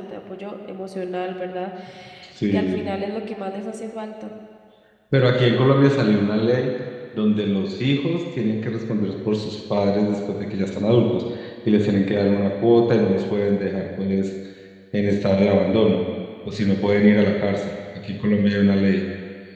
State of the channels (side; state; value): both; identical; correlation 1.00